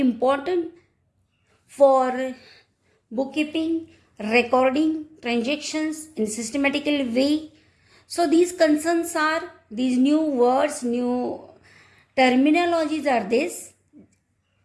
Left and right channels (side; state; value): both; identical; correlation 1.00